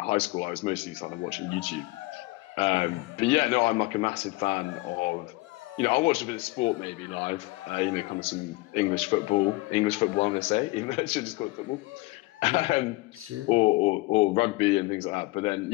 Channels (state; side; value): quieter; right; 22.3 dB